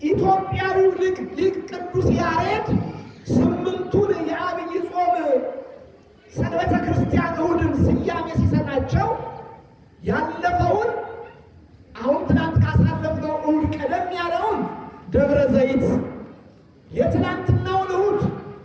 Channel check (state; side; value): identical; both; correlation 1.00